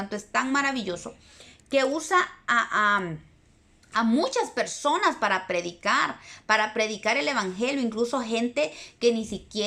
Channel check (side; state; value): both; identical; correlation 1.00